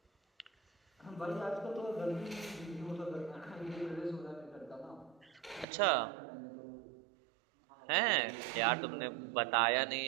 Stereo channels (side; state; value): left; drops out; at 5.7 s